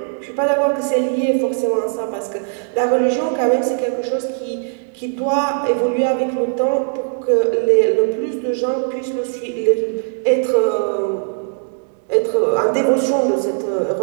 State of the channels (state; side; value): silent; left; 67 dB below the other